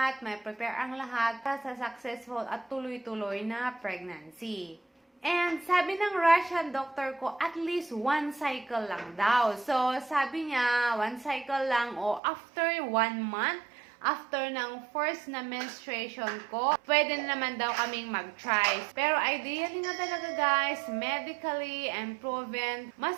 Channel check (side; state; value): left; drops out; at 12.2 s